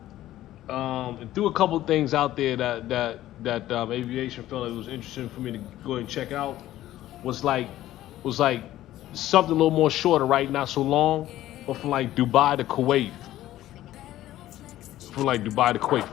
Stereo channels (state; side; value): quieter; right; 14.2 dB